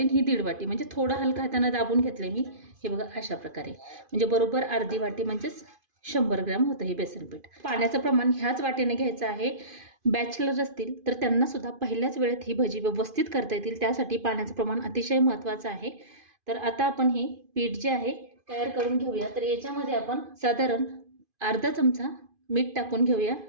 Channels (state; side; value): late; left; 2.5 ms